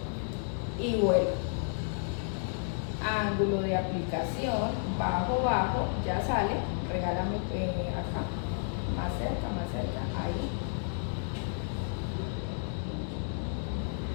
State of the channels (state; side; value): silent; right; 57 dB below the other